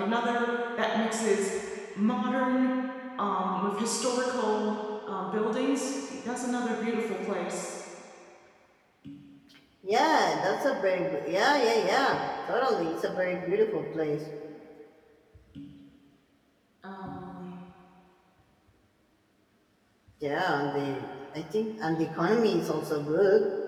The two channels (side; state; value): both; identical; correlation 1.00